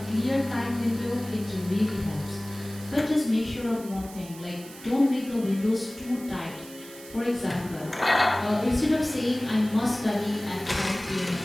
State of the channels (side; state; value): right; noise; hiss, 18 dB below the sound